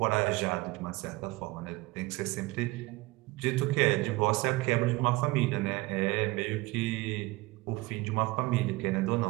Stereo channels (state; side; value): quieter; left; 21.1 dB